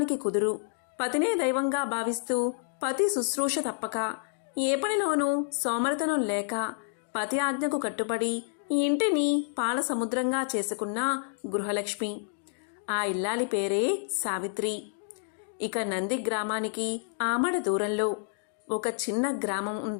కుదురు. పతినే దైవంగా భావిస్తూ పతి శుశ్రూష తప్పక, ఏ పనిలోనూ సోమరతనం లేక పతి ఆజ్ఞకు కట్టుబడి ఈ ఇంటిని పాల సముద్రంగా చేసుకున్న గృహలక్ష్మి. ఆ ఇల్లాలి పేరే సావిత్రి. ఇక నంది గ్రామానికి ఆమడ దూరంలో ఒక చిన్న గ్రామం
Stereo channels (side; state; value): right; silent; digital silence